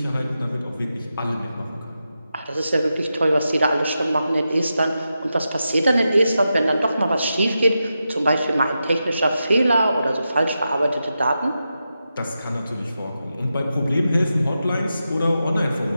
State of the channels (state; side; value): inverted; both; correlation -0.89